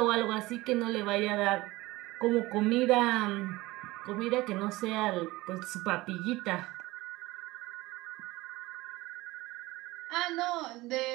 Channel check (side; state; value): left; quieter; 19.8 dB